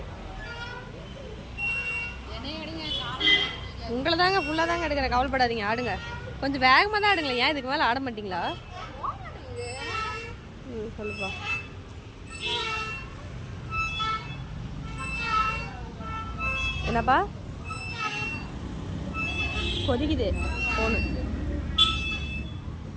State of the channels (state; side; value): identical; both; correlation 1.00